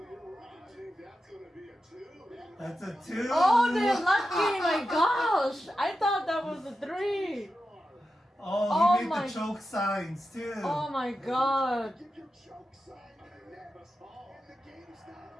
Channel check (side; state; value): both; normal; correlation 0.90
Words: That's a 2. Oh, they're lucky. My gosh. I thought that was a 3. Oh, Oh he made my- the choke signs too. Oh my god.